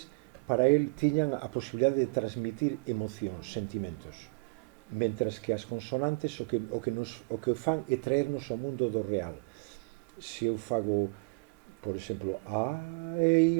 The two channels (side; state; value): left; quieter; 31.2 dB